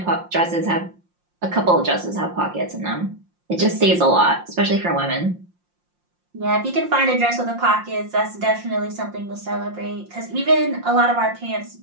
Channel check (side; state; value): left; late; 5.7 ms